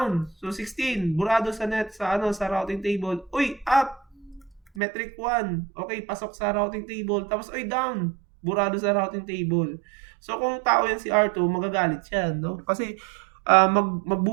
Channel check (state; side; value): drops out; left; at 4.6 s